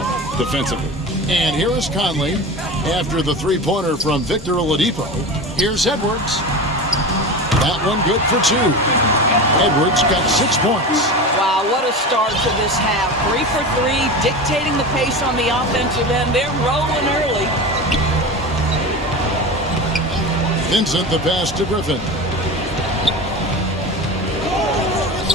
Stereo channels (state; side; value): normal; both; correlation 0.28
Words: defensively. And here is Conley after the three-pointer from Victor Oladipo. Here's Edwards. That one good for two. Edwards got 6 points. Wow, what a start to this half. 3 for 3, dictating the pace on the offensive end. They're rolling early. Vincent, the pass to Griffin.